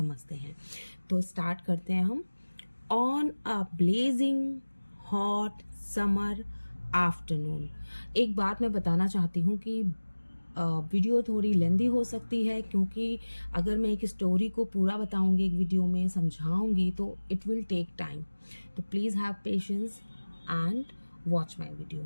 हैं। तो स्टार्ट करते हैं हम। On a blazing hot summer afternoon. एक बात मैं बताना चाहती हूँ कि वीडियो थोड़ी लेंदी हो सकती है, क्योंकि अगर मैं एक स्टोरी को पूरा बताऊंगी, एक वीडियो में समझाऊंगी, तो इट विल टेक टाइम। तो please have patience and watch my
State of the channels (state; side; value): inverted; both; correlation -1.00